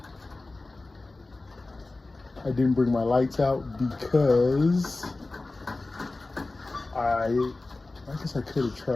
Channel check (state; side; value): quieter; right; 3.2 dB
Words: I didn't bring my lights out because I guess I could have